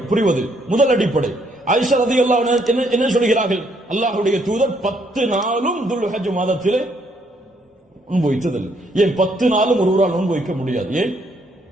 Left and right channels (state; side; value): normal; both; correlation 0.70